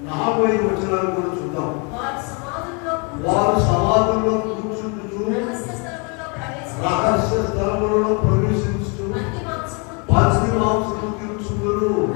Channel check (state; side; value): quieter; right; 33.9 dB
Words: 40 వచనాలు కూడా చూద్దాం. వారు సమాధుల్లో కూర్చుంటూ రహస్య స్థలములలో ప్రవేశించు పచ్చి మాంసము తీర్చుదురు.